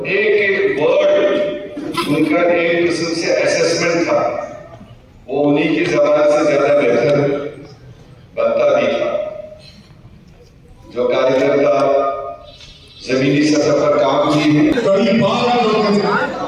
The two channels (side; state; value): both; identical; correlation 1.00